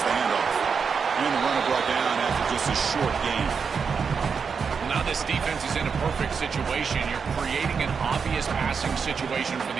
the handoff. And the runner brought down after just a short gain. Now this defense is in a perfect situation. You're creating an obvious passing situation for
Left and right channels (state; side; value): quieter; left; 5.9 dB